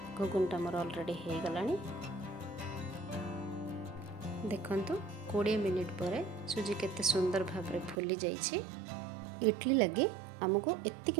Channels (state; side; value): drops out; left; at 8.0 s